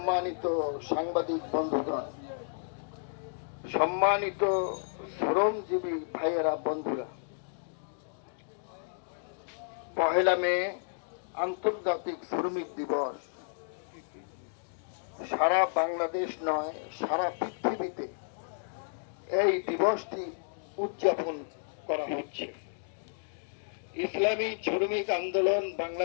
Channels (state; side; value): silent; right; digital silence